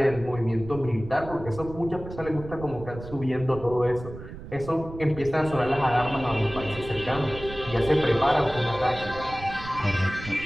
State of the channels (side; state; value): right; noise; rumble, 13 dB below the sound